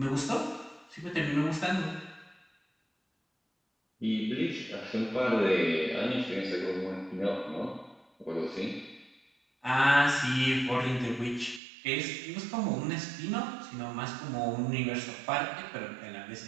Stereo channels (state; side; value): drops out; left; at 11.6 s